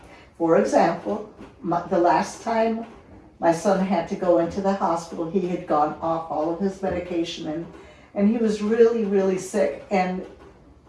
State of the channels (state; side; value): identical; both; correlation 1.00